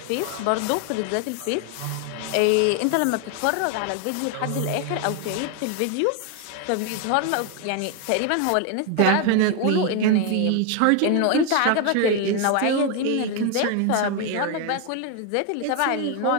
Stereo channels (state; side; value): different; both; correlation 0.01